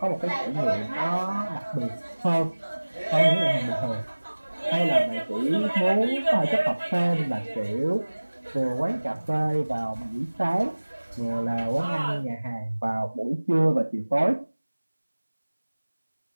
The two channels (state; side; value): inverted; both; correlation -1.00